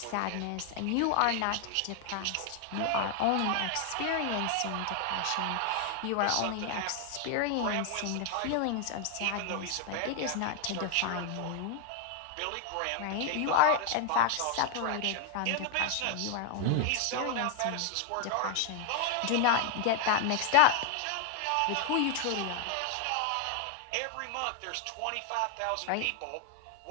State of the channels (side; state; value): both; different; correlation 0.00